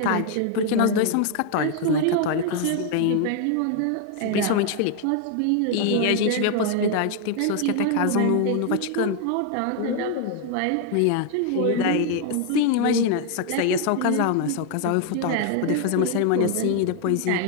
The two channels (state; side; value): different; both; correlation 0.00